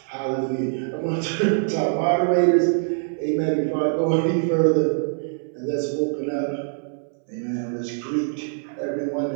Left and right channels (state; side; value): silent; left; 63 dB below the other